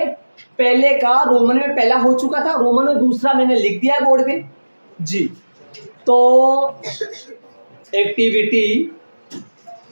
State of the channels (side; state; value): both; inverted; correlation -1.00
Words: पहले का रोमन में पहला हो चुका था, रोमन में दूसरा मैंने लिख दिया है बोर्ड पे जी। तो एक्टिविटी